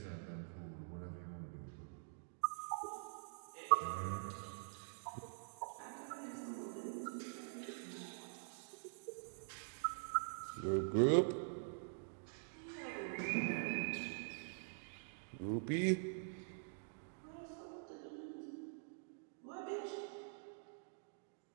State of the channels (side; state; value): left; silent; digital silence